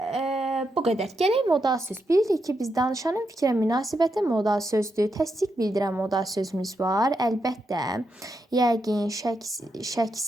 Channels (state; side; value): normal; both; correlation 0.83